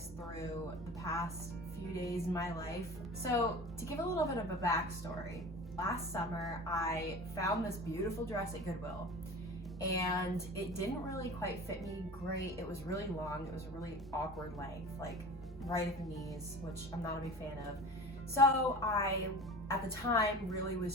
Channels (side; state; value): both; normal; correlation 0.37